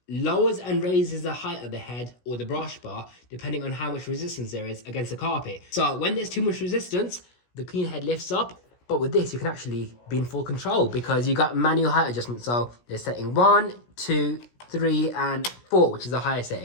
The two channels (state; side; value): late; right; 17 ms